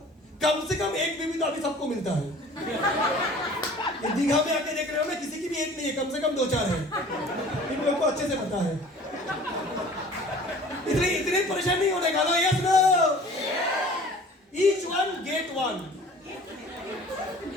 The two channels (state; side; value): normal; both; correlation 0.47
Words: कम से कम एक बीवी तो अभी सबको मिलता है। ये दीघा में आके देख रहे हो ना, किसी की भी एक नहीं है, कम से कम 2-4 है। इन लोगों को अच्छे से पता है। इतनी परेशान नहीं होने का। Yes no, each one get one.